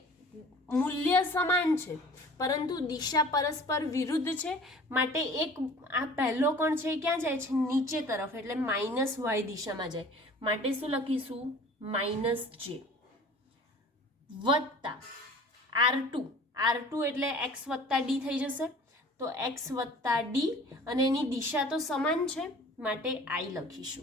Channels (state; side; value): normal; both; correlation 0.46